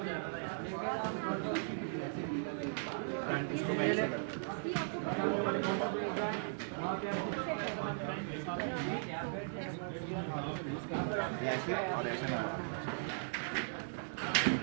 ऐसे और ऐसे ना।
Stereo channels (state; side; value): silent; left; digital silence